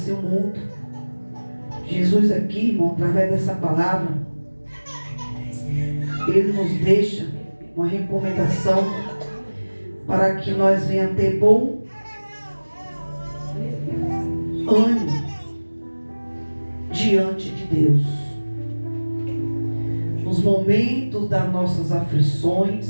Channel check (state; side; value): inverted; both; correlation -1.00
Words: o mundo. Jesus aqui, irmão, através dessa palavra, Ele nos deixa uma recomendação para que nós venhamos ter bom ânimo diante de Deus. Nos momentos das nossas